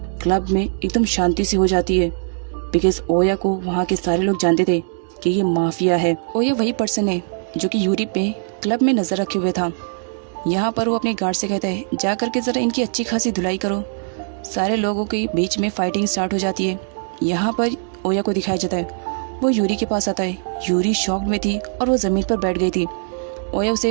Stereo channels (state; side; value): silent; left; digital silence